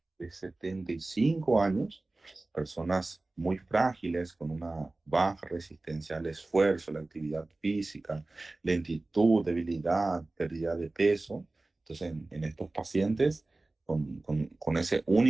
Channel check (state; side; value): quieter; left; 3.0 dB